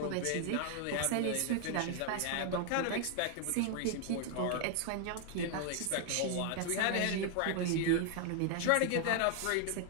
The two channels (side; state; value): both; different; correlation 0.00